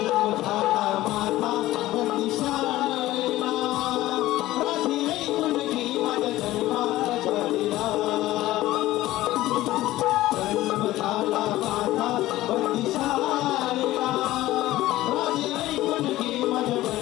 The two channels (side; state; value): right; quieter; 16.2 dB